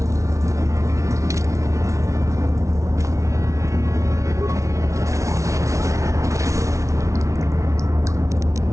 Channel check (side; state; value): left; late; 0.15 ms